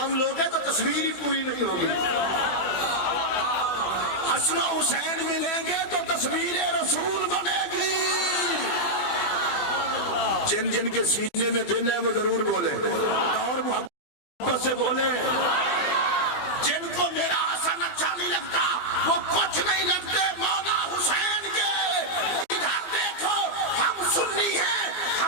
لوگے تو تصویر ہی پوری نہیں ہوگی، حسن و حسین ملیں گے تو تصویر رسول بنے گی۔ جن جن کے سینے میں دل ہے وہ ضرور بولے اور محبت سے بولے۔ جن کو میرا حسن اچھا نہیں لگتا وہ کچھ نہیں لگتے مولا حسین کے۔ ادھر دیکھو، ہم سنی ہیں،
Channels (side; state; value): right; late; 20 ms